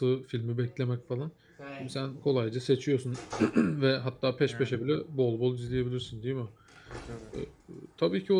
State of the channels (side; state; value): both; identical; correlation 1.00